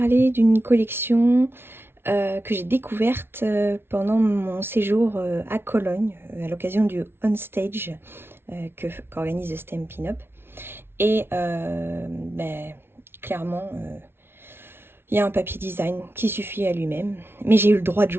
d'une collection que j'ai découverte pendant mon séjour à Cologne, à l'occasion du On Stage qu'organise Stampin' Up. Et clairement, il y a un papier design qui suffit à lui-même, mais j'ai eu le droit de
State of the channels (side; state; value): left; late; 0.11 ms